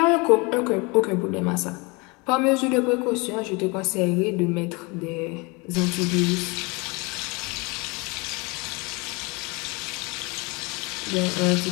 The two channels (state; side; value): quieter; right; 27.6 dB